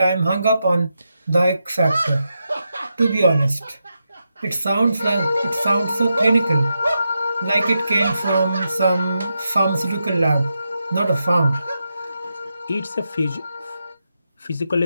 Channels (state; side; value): inverted; both; correlation -0.86